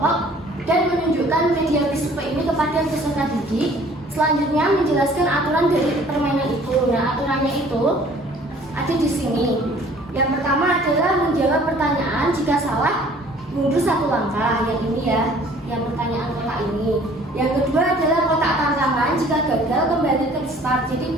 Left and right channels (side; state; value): both; normal; correlation 0.53